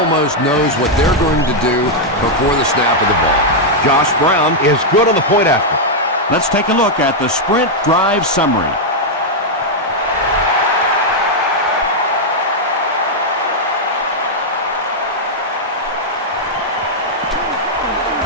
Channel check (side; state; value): both; normal; correlation -0.02